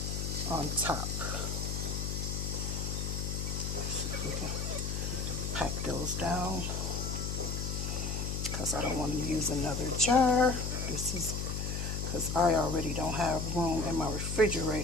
on top. See if we can pack those down, because I don't want to use another jar. This is because I already don't have room in my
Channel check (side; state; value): left; noise; hum, 2 dB below the sound